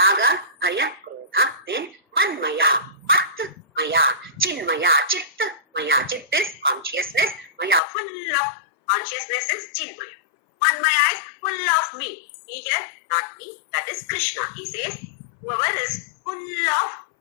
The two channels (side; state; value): right; drops out; at 7.8 s